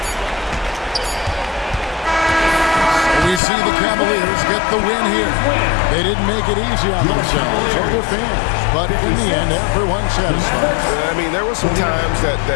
We see the Cavaliers get the win here. They didn't make it easy on themselves or their fans, but in the end, everyone's satisfied. I mean, there were some times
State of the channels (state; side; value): drops out; right; at 3.4 s